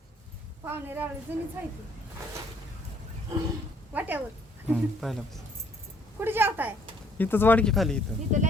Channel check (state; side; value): normal; both; correlation 0.63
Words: पाहुणे रावळे जुनीच आहे ती. वाट्यावर पहिल्यापासून कुठे जेवताय? इथंच वाढकी खाली इथं. इथं